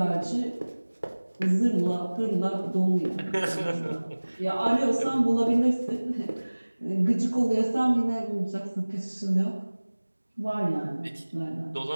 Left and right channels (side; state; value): both; inverted; correlation -1.00